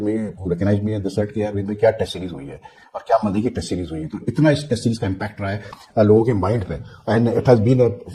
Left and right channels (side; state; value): both; identical; correlation 1.00